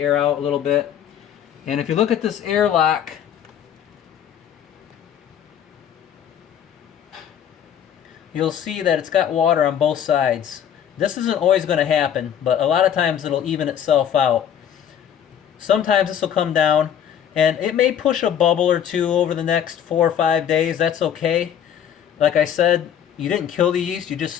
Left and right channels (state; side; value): quieter; right; 9.3 dB